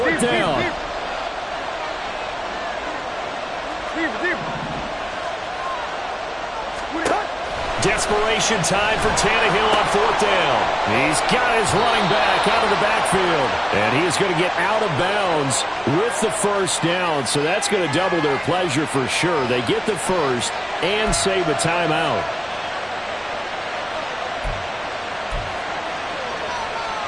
down. Desperation time for Tannehill on fourth down. He's got his running back out of the backfield. And he is going to get out of bounds with the first down. So that's going to double their pleasure for sure. They get the first and save a timeout.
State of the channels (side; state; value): both; identical; correlation 1.00